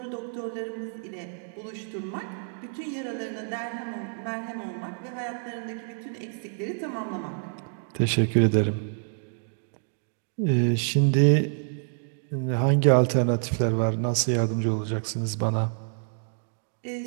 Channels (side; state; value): left; silent; digital silence